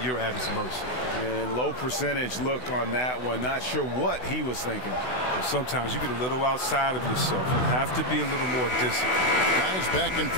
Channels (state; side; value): late; right; 16 ms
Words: at his mercy. And low percentage look on that one. Not sure what he was thinking. And sometimes you get a little outside of yourself. You have to be a little more disciplined. Guys back and